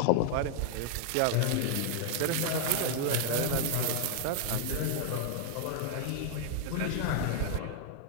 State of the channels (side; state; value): both; different; correlation 0.00